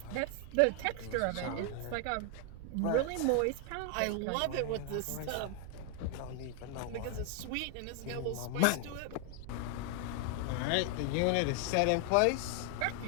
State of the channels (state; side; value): different; both; correlation 0.00